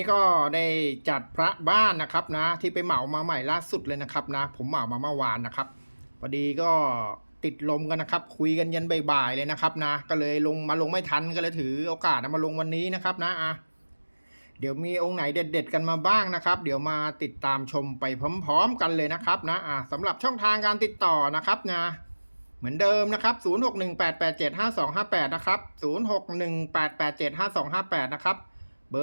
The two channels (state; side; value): inverted; both; correlation -1.00